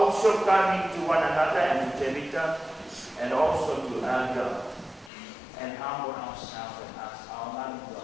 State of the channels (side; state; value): right; drops out; at 5.1 s